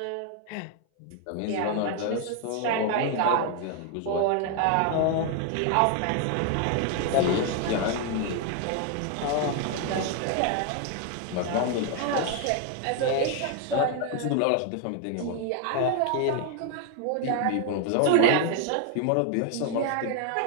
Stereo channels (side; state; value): both; different; correlation 0.01